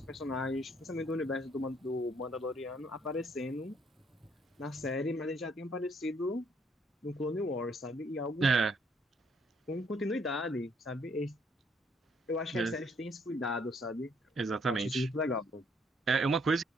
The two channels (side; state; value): both; normal; correlation 0.67